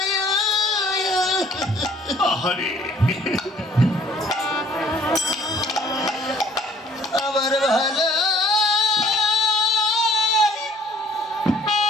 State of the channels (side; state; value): both; normal; correlation 0.58